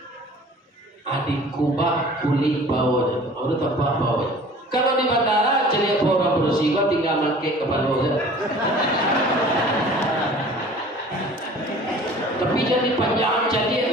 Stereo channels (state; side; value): normal; both; correlation 0.46